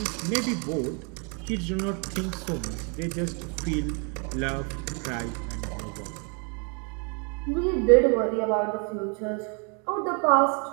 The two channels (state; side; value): quieter; left; 36.5 dB